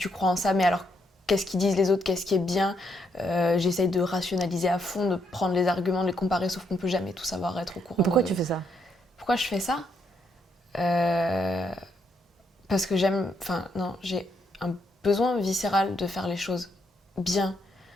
crois en ça, mais alors qu'est-ce qu'ils disent les autres, qu'est-ce qui est bien, j'essaye de rationaliser à fond, de prendre les arguments, de les comparer, sauf qu'on peut jamais tout savoir, être au courant. Pourquoi tu fais ça ? Pourquoi je fais ça ? Parce que j'ai un besoin viscéral de faire les choses bien.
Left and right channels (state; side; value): normal; both; correlation 0.75